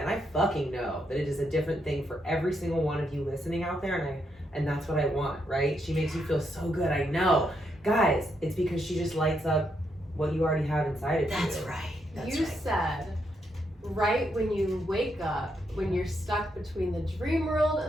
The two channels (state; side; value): normal; both; correlation 0.79